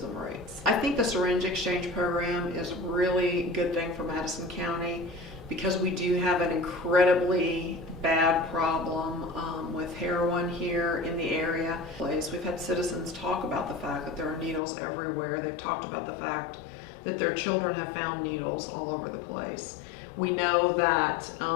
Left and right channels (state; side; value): drops out; right; at 14.6 s